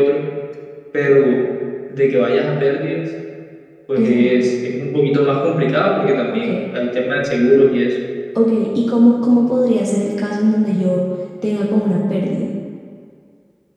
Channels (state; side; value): identical; both; correlation 1.00